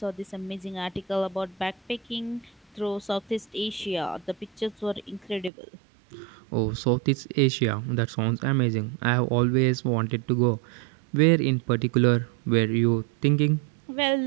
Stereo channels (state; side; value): drops out; left; at 5.5 s